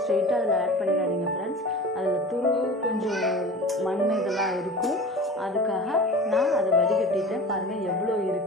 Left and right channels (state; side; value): normal; both; correlation 0.36